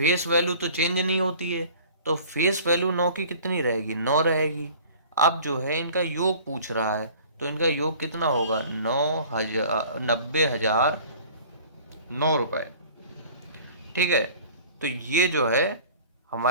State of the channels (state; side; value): inverted; both; correlation -0.47